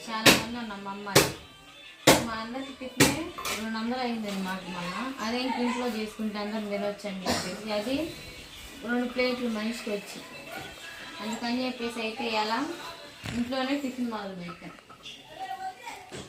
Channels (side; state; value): both; identical; correlation 1.00